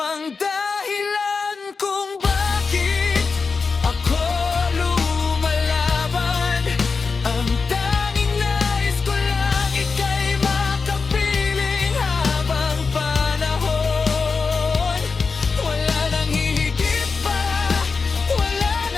dahilan kung bakit ako lumalaban. Ang tanging nais ko lang ika'y makapiling habang panahon. Wala nang hihigit pa, wala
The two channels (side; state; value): right; quieter; 4.7 dB